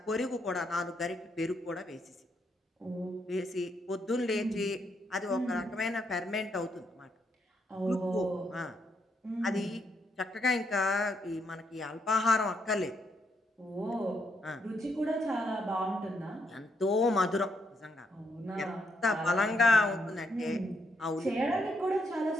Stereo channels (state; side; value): normal; both; correlation 0.76